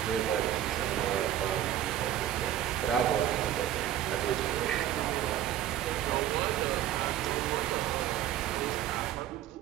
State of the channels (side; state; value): left; quieter; 11.7 dB